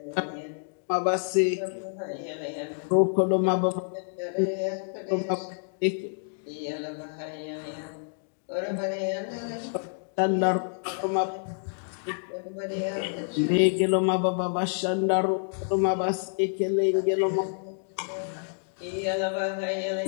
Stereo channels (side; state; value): right; silent; digital silence